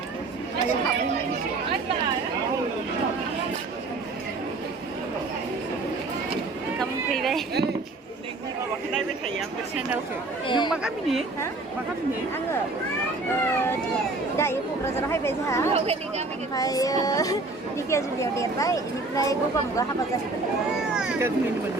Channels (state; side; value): quieter; left; 3.3 dB